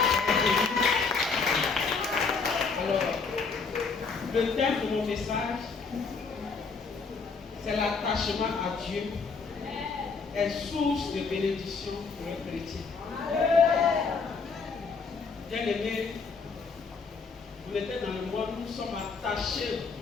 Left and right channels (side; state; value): right; quieter; 4.8 dB